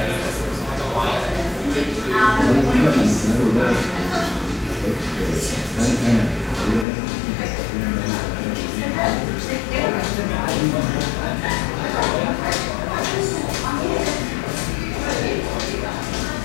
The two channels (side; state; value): right; drops out; at 6.9 s